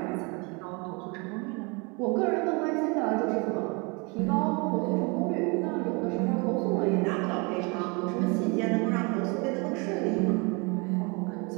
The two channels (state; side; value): quieter; left; 30.2 dB